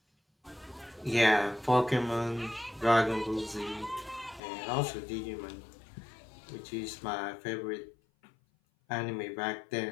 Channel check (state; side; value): drops out; right; at 4.4 s